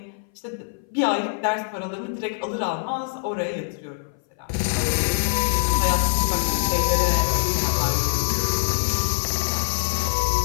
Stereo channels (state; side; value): silent; right; 58 dB below the other